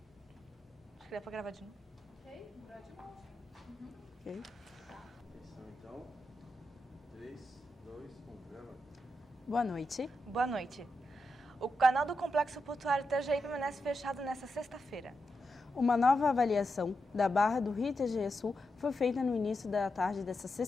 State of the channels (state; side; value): normal; both; correlation 0.87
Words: Acho que dá para gravar de novo. Ok. Atenção então. 3, 2, 1, gravando. Boa noite. Boa noite. O canal do Complexo Portuário Itajaí permanece fechado nesta sexta-feira. Uma nova avaliação da Barra do Rio Itajaí Sul foi feita no início da tarde desta